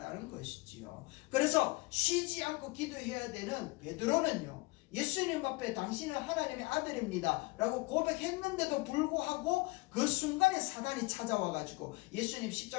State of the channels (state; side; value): quieter; right; 23.6 dB